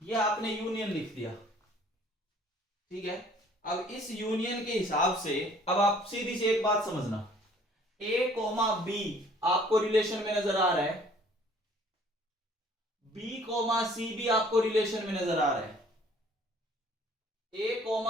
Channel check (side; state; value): both; normal; correlation 0.56